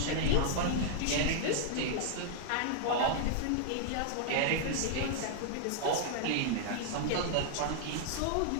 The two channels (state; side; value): different; both; correlation 0.00